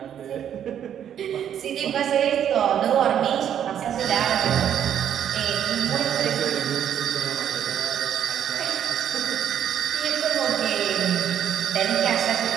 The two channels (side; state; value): left; quieter; 9.6 dB